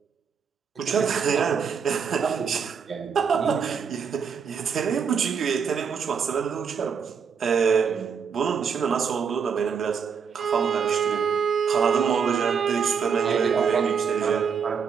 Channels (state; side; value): quieter; left; 6.5 dB